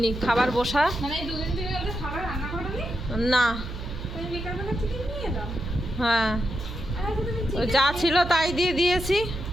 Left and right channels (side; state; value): right; noise; hum, 8 dB below the sound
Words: খাবার বসা না। হ্যাঁ, যা ছিল তাই দিয়ে দিয়েছি।